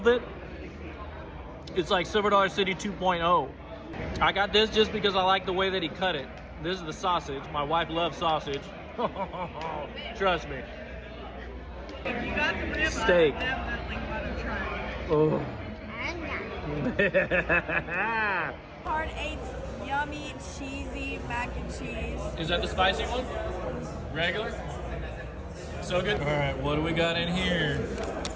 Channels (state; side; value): identical; both; correlation 1.00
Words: It's like Silver Dollar City 2.0. I got this just because I like the way that he cut it. This is the sausage. My wife loves sausage. Trust me. If you got the rib, Steak. I definitely want to try. Oh. Hard Eight's yummy, cheesy mac and cheese. Is that the spicy one? Regular? So good. All right, what do we got in here?